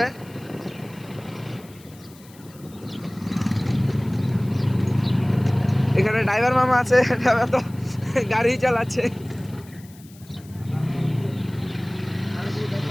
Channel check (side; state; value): left; noise; hiss, 24 dB below the sound